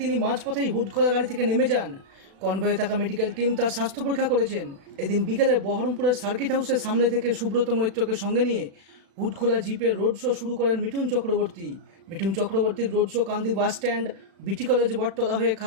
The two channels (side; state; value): left; late; 36 ms